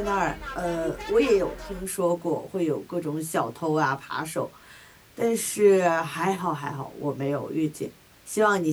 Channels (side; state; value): both; identical; correlation 1.00